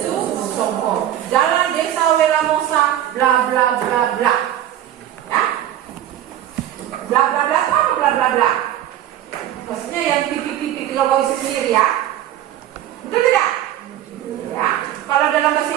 Songko, Jalan Desa Welamosa, bla bla bla bla. Ya, bla bla bla itu apa bla bla bla? Maksudnya yang titik-titik kalau kau isi sendiri ya, betul tidak? Ya, kalau dalam bahasa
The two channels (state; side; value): quieter; left; 11.9 dB